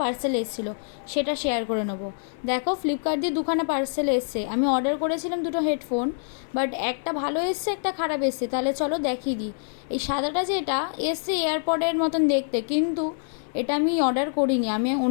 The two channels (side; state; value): right; silent; 61 dB below the other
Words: পার্সেল এসেছিলো, সেটা শেয়ার করে নেবো। দেখো, ফ্লিপকার্ট দিয়ে দুখানা পার্সেল এসছে। আমি অর্ডার করেছিলাম দুটো হেডফোন, বাট একটা ভালো এসছে, একটা খারাপ এসছে। তাহলে চলো দেখিয়ে দিই। এই সাদাটা যেটা এসছে এয়ারপডের মতন দেখতে, কিন্তু এটা আমি অর্ডার করিনি, আমি